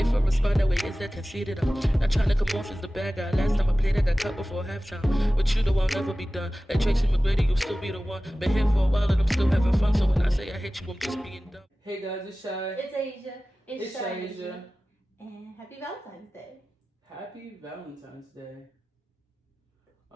I respond that way, is that conceited? I'm not trying to come off as the bad guy. Last time I played, I got cut before halftime. With you, though, I'll never be done. Like Tracy McGrady, you'll still be the one. Been here for a while and I'm still having fun. So when I say I hate you, I'm just being dumb. Hey guys, it's Shai. It's Asia. It's Shaiasia. And happy Valentine's Day. Happy Valentine's Day.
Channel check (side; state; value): both; normal; correlation 0.96